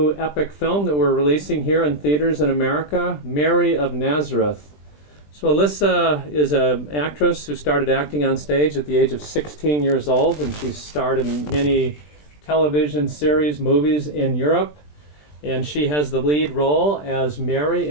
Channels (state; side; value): late; right; 20 ms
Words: epic film that we're releasing here in theaters in America, Mary of Nazareth. So Alissa is an actress who started acting on stage at the age of 16 years old, and she's starred in many television series, movies in Europe. And she has the lead role as Mary